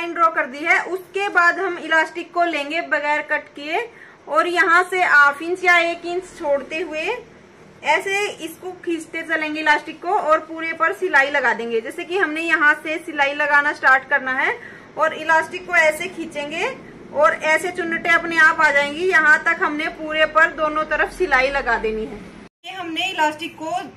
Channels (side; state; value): both; identical; correlation 1.00